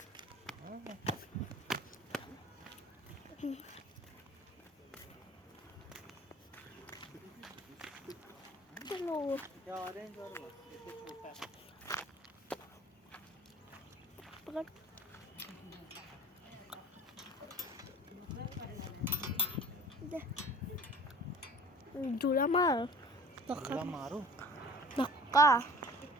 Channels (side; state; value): both; normal; correlation 0.45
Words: चलो ऑरेंज वर बस. इथे छोटा पकड. जुला मार तुला मारू धक्का.